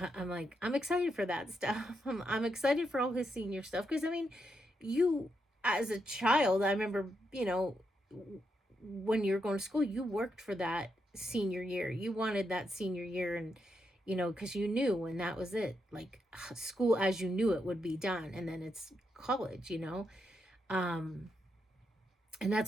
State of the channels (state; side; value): normal; both; correlation 0.82